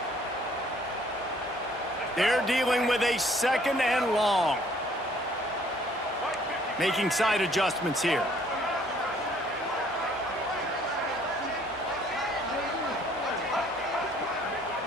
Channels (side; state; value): both; normal; correlation 0.60